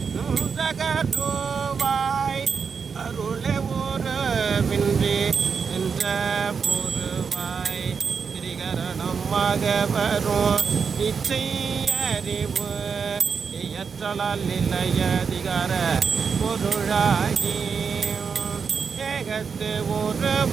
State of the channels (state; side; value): quieter; left; 5.9 dB